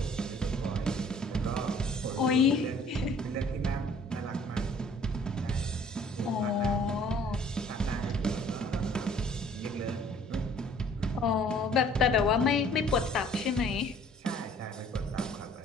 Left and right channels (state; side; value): normal; both; correlation 0.55